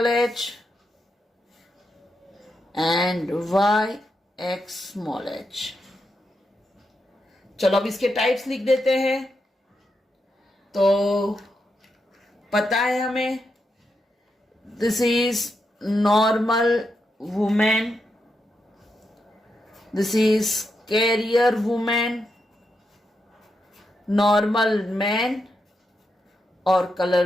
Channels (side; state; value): both; normal; correlation 0.84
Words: H and Y X small H. चलो अब इसके टाइप्स लिख देते हैं। तो पता है हमें, this is normal women, this is carrier women, normal man और